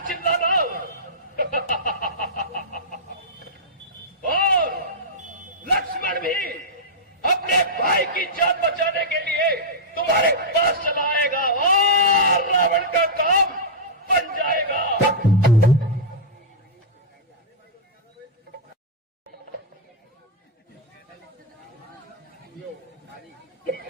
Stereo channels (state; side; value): normal; both; correlation -0.09